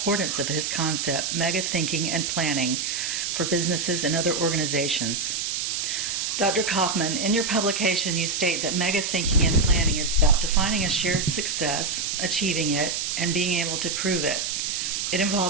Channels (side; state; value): right; noise; hiss, 1 dB below the sound